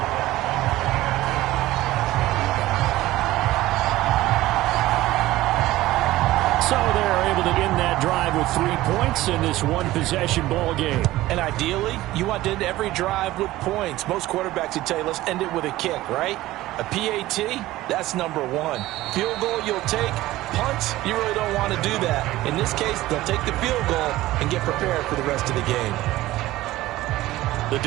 So they're able to end that drive with 3 points in this one-possession ball game. And ideally, you want to end every drive with points. Most quarterbacks would tell you, let's end it with a kick, right? A PAT, that's number 1. Field goal you'll take. Punts, you really don't want to do that. In this case, they'll take the field goal and get prepared for the rest of the game. The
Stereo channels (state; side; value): quieter; left; 16.7 dB